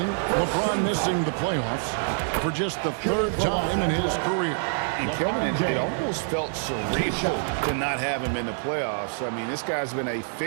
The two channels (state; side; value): silent; left; digital silence